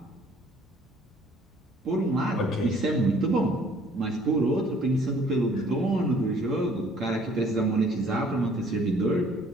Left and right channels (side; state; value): both; normal; correlation 0.58